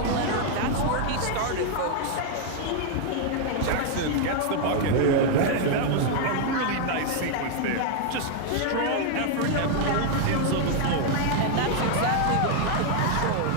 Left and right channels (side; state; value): both; different; correlation 0.00